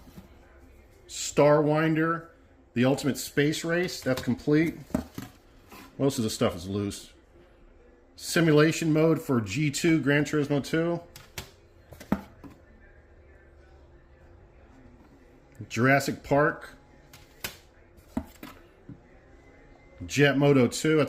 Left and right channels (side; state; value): both; identical; correlation 1.00